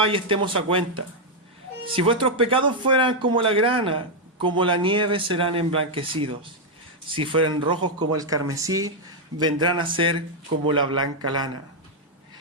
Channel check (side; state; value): both; normal; correlation -0.01